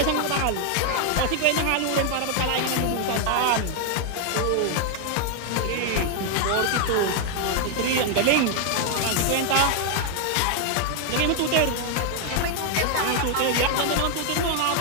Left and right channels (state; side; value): different; both; correlation 0.00